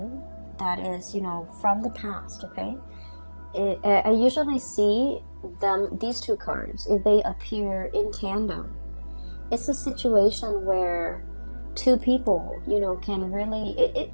that is, from the past, okay? I usually see these two cards, if they appear in tandem, it's a situation where two people, can really,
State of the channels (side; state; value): both; inverted; correlation -1.00